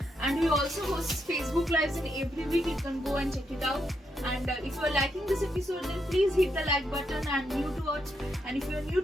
And we also host Facebook Lives in every week. You can go and check it out. And if you are liking this episode, then please hit the like button. And if you are new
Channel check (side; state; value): both; normal; correlation 0.80